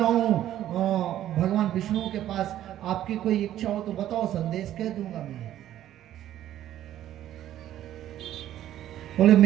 हूं भगवान विष्णु के पास, आपकी कोई इच्छा हो तो बताओ, संदेश कह दूंगा मैं। बोले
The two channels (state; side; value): quieter; left; 12.4 dB